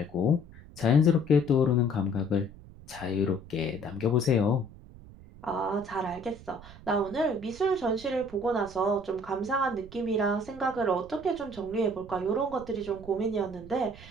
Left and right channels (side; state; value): right; noise; rumble, 18 dB below the sound